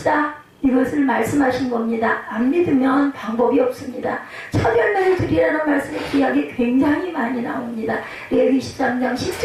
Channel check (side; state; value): both; identical; correlation 1.00